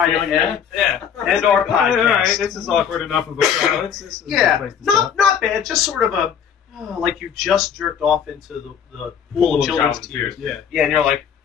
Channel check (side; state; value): right; quieter; 8.0 dB